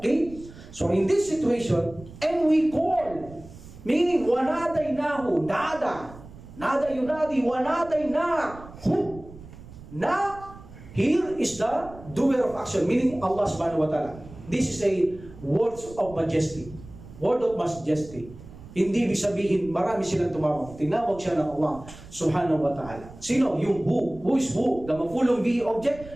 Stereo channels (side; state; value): right; noise; rumble, 18 dB below the sound